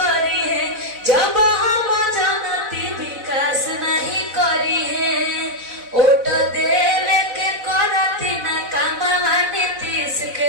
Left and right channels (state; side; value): late; left; 4.0 ms